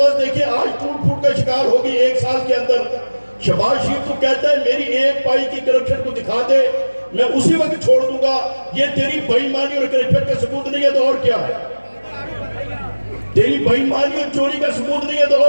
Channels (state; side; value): inverted; both; correlation -1.00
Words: دیکھیں آج ٹوٹ پھوٹ کا شکار ہو گئی 1 سال کے اندر۔ شہباز شریف تو کہتا ہے میری 1 پائی کی کرپشن کو دکھا دے، میں اسی وقت چھوڑ دوں گا۔ یہ تیری بے ایمانی اور کرپشن کا ثبوت نہیں ہے تو اور کیا ہے؟ تیری بے ایمانی اور چوری کا ثبوت نہیں ہے تو